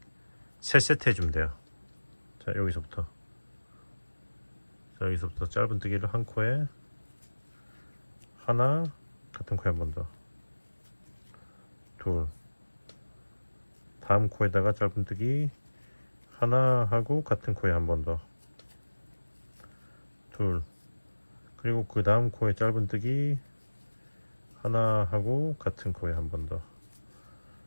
3세트 해주면 돼요. 자, 여기서부터 짧은뜨기를 한 코에 하나, 같은 코에 한 번 더, 둘, 다음 코에다가 짧은뜨기 하나 하고 같은 코에 한 번 더, 둘, 그리고 그 다음 코에 짧은뜨기 하나 하고 같은 코에 한 번 더,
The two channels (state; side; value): inverted; both; correlation -1.00